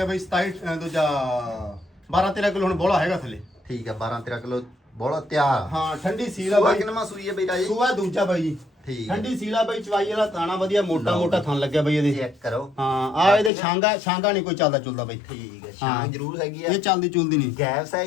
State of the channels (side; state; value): right; drops out; at 13.5 s